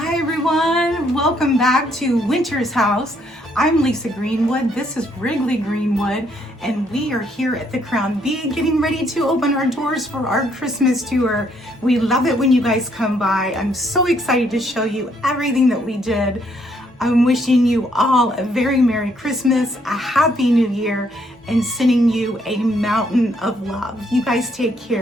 Hi everyone, welcome back to Winter's House. I'm Lisa Greenwood, this is Wrigley Greenwood, and we are here at the Crown B getting ready to open our doors for our Christmas tour. We love it when you guys come by. I'm so excited to show you everything that we did. I'm wishing you all a very Merry Christmas, a Happy New Year, and sending you a mountain of love. You guys take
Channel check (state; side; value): normal; both; correlation 0.70